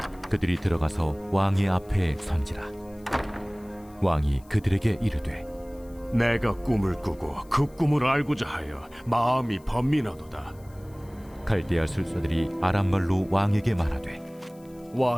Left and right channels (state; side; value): noise; left; hiss, 28 dB below the sound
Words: 그들이 들어가서 왕의 앞에 선지라. 왕이 그들에게 이르되 내가 꿈을 꾸고 그 꿈을 알고자 하여 마음이 번민하도다. 갈대아 술사들이 아람말로 왕에게 말하되